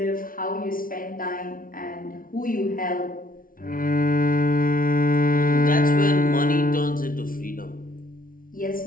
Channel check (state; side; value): late; right; 0.41 ms